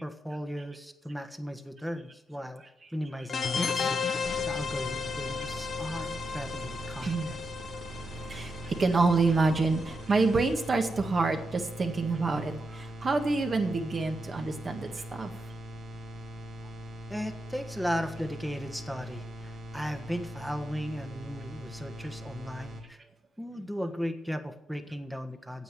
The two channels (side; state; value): both; normal; correlation 0.86